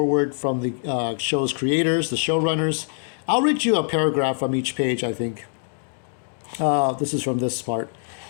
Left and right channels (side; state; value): right; silent; digital silence